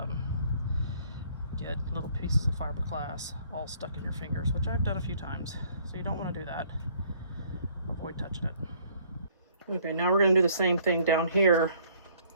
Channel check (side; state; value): both; inverted; correlation -0.61